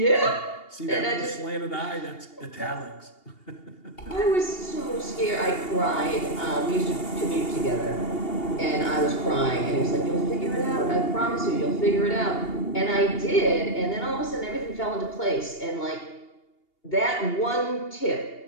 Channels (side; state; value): right; late; 2.8 ms